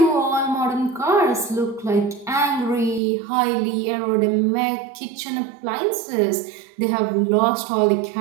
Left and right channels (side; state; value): left; drops out; at 3.0 s